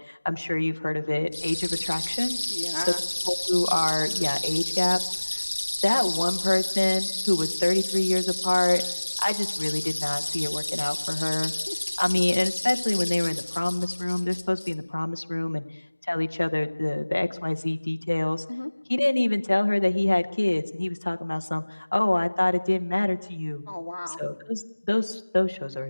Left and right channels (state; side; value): inverted; both; correlation -1.00